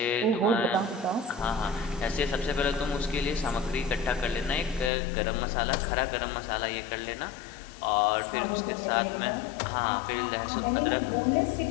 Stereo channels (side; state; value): right; drops out; at 4.9 s